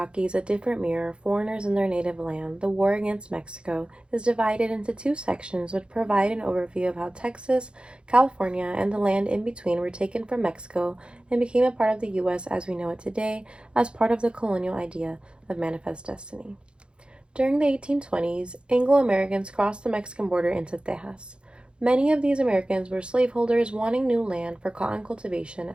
A Different Mirror, Foreigners in Their Native Land, The War Against Mexico, is divided into two sections which provide an overview of how Texas, California, and the land in between were taken from Mexico and became a part of the U.S. as we know it today, as part of the colonial idea of manifest destiny. During the 1820s, Anglo-Americans crossed the Mexican border into Texas. Many of these Americans were slaveholders wanting new land for cotton cultivation,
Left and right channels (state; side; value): late; left; 0.055 ms